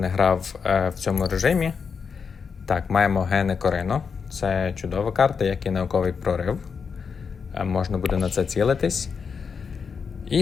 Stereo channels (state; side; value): quieter; right; 5.9 dB